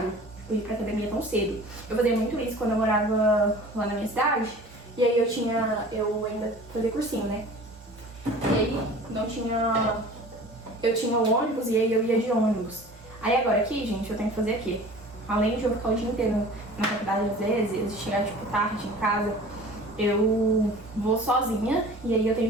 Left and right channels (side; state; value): both; normal; correlation 0.43